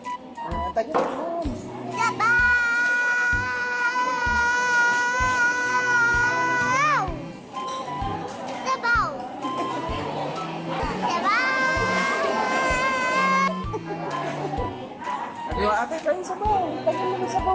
Tagal naman. Sabaw. Sabaw. Sabaw. Sabi mo, ate, tayo sabaw. Tagal naman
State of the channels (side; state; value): both; identical; correlation 1.00